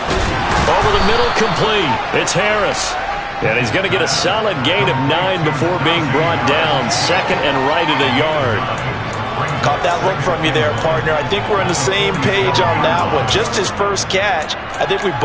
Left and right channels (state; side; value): identical; both; correlation 1.00